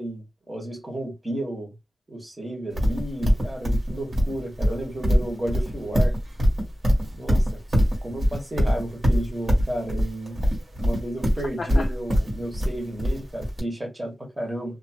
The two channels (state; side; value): normal; both; correlation 0.96